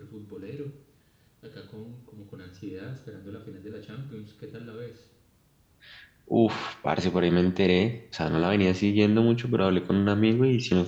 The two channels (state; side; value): identical; both; correlation 1.00